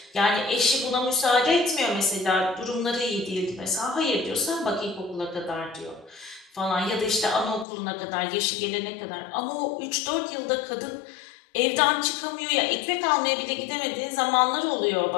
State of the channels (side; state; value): right; drops out; at 7.7 s